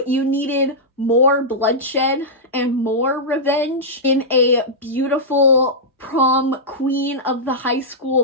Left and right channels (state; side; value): normal; both; correlation -0.12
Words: you needed more bloodshed and more revenge in a beautiful prom queen of the high